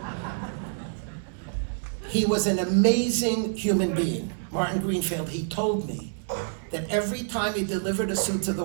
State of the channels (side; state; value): left; silent; digital silence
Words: He was an amazing human being. Martin Greenfield, he told me that every time he delivered a suit to the